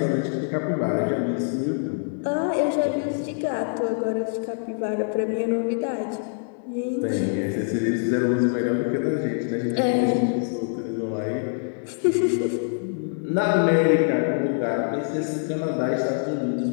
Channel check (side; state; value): right; silent; digital silence